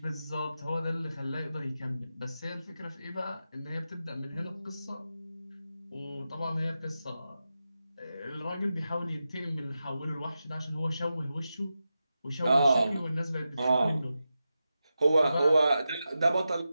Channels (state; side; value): inverted; both; correlation -0.91